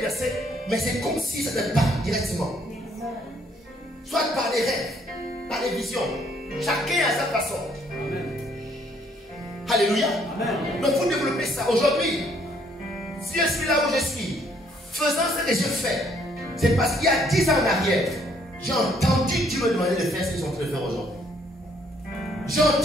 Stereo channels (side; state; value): both; normal; correlation 0.66